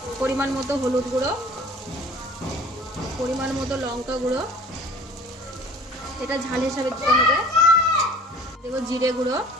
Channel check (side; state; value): both; normal; correlation 0.47